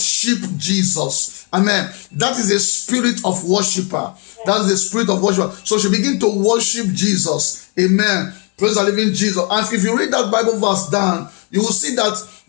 Jesus. Amen. That is a spirit of worshiper. That's the spirit of worshiper. So she began to worship Jesus. Amen. Praise the living Jesus. And if you read that Bible verse down, you will see that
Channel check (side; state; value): right; quieter; 34.0 dB